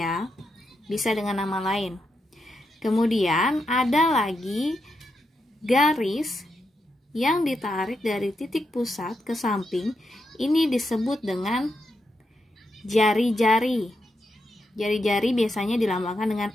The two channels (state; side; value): normal; both; correlation 0.84